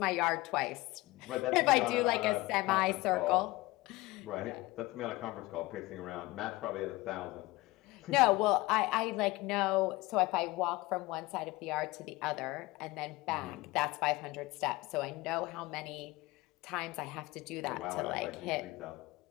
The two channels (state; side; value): quieter; right; 20.7 dB